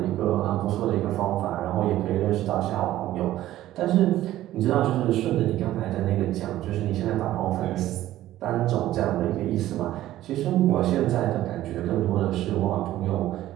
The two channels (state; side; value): quieter; left; 14.2 dB